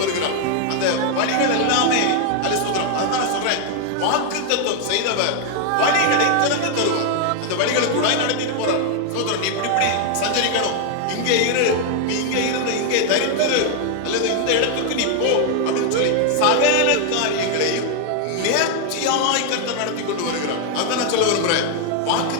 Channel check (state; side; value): different; both; correlation 0.00